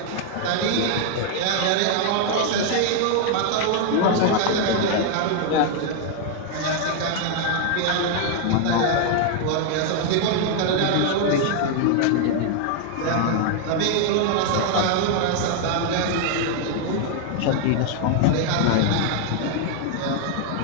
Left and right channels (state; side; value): different; both; correlation 0.00